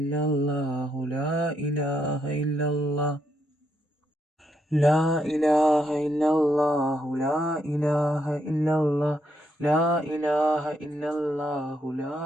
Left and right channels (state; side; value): normal; both; correlation 0.78